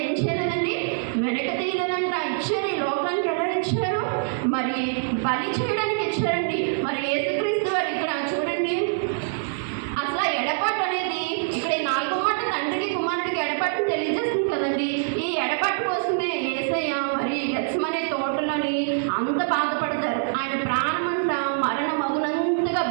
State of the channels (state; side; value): silent; left; digital silence